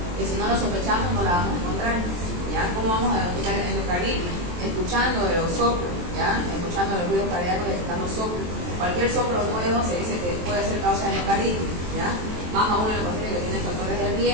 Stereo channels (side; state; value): left; late; 23 ms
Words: si no lo sospechamos no la vamos a encontrar, ¿ya? ¿Cómo vamos a identificar endocarditis? Escuchando los soplos, ¿ya? Escuchando los ruidos cardíacos, detectando soplos. Cualquier soplo nuevo se dice que puede ser causa de endocarditis, ¿ya? Más aún en los pacientes que tienen factores de